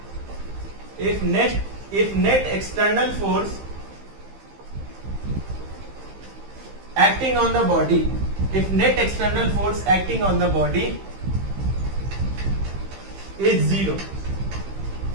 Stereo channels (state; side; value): late; left; 15 ms